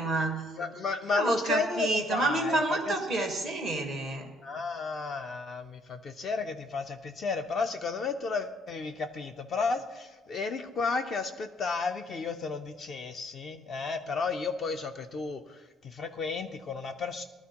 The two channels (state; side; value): normal; both; correlation 0.65